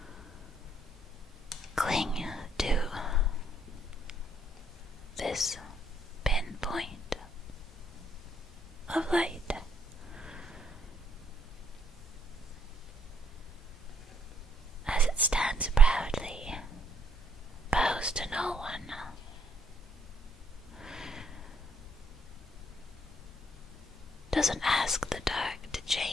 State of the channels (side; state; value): both; normal; correlation 0.68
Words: cling to this pinpoint of light. As it stands proudly, bows to no one. Doesn't ask the dark to